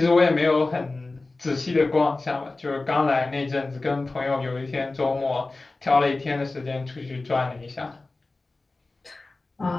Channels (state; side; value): quieter; right; 3.3 dB